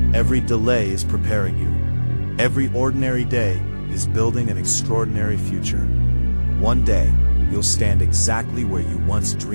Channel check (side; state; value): both; inverted; correlation -1.00